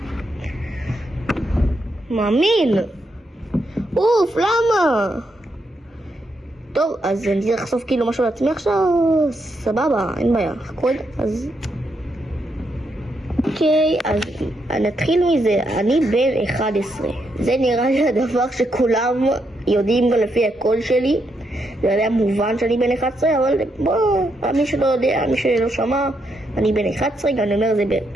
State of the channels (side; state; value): both; normal; correlation 0.80